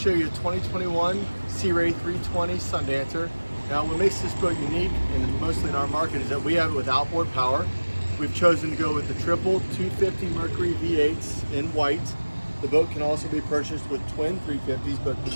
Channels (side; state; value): both; inverted; correlation -1.00